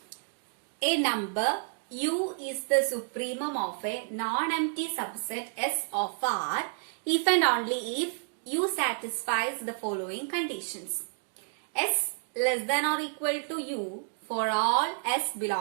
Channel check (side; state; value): left; silent; digital silence